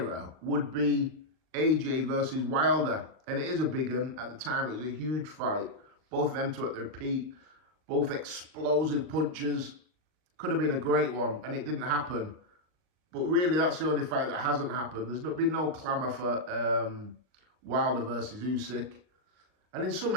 would be AJ versus Wilder. And it is a big one. At the time, it was a huge fight. Both of them two at their peak. Both explosive punches. Could have been a great one, and it didn't happen. But really, that's the only fight that hasn't happened. There's been no clamour for Wilder versus Usyk. And in some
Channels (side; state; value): left; late; 39 ms